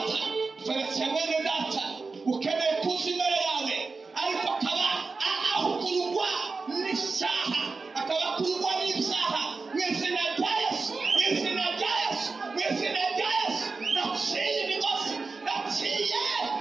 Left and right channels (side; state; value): left; quieter; 4.2 dB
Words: turetse mwene data, ukeneye kuza imbere yawe, ariko akaba akurwa n'icyaha, akaba akurwa n'ibyaha. Mw'izina rya Yesu, mw'izina rya Yesu, mw'izina rya Yesu, naciye imigozi, naciye